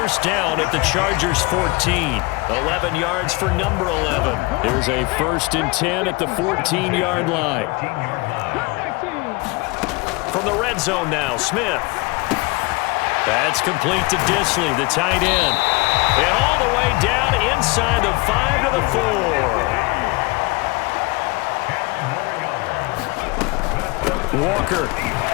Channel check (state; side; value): quieter; right; 25.5 dB